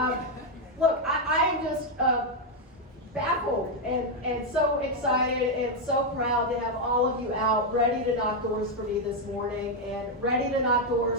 Look, I am just baffled and so excited and so proud to have all of you out ready to knock doors for me this morning and ready to knock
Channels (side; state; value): both; normal; correlation 0.01